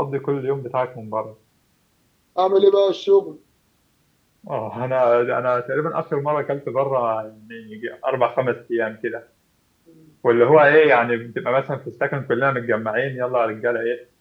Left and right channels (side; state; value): both; identical; correlation 1.00